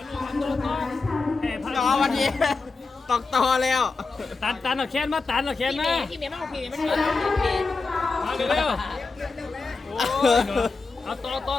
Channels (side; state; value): right; quieter; 4.1 dB